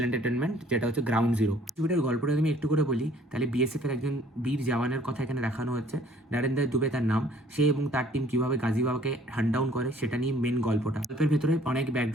এন্টারটেনমেন্ট, যেটা হচ্ছে গ্রাউন্ড জিরো। ছবিটার গল্পটা আমি একটু করে বলি, তাহলে বিএসএফ এর একজন বীর জওয়ানের কথা এখানে দেখানো হচ্ছে। নরেন্দ্র দুবে তার নাম। সে এবং তার টিম কিভাবে গাজীবাবাকে হান্ট ডাউন করে সেটা নিয়ে মেন গল্পটা। গল্পের ভেতরে অনেক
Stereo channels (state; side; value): normal; both; correlation 0.57